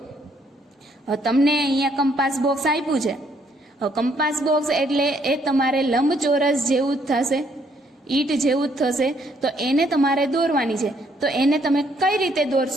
હવે તમને અહીંયા કંપાસ બોક્સ આપ્યું છે. હવે કંપાસ બોક્સ એટલે એ તમારે લંબચોરસ જેવું જ થશે, ઈટ જેવું જ થશે, તો એને તમારે દોરવાની છે. તો એને તમે કઈ રીતે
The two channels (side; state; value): both; normal; correlation 0.69